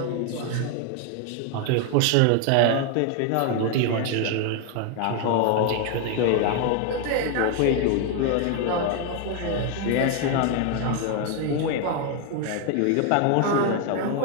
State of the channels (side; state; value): both; different; correlation 0.01